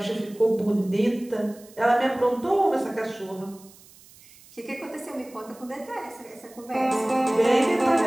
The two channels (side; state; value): right; noise; hiss, 24 dB below the sound